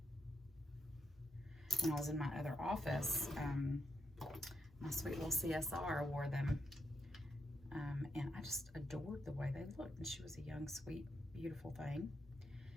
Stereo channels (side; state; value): both; normal; correlation 0.81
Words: When I was in my other office, my sweet little CSR wore them, and I just adored the way they looked. And she was a young, sweet, beautiful thing.